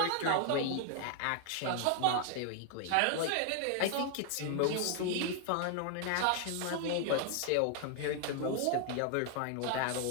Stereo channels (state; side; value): different; both; correlation 0.00